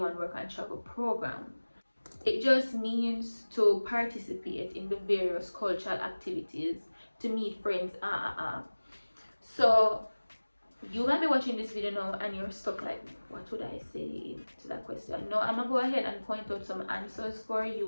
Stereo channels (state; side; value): inverted; both; correlation -1.00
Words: work and travel program. It just means to participate in the various cultural activities, to meet friends. So you might be watching this video now and you're stuck like, what would I say to that question? No, I'm gonna go ahead and point out some answers for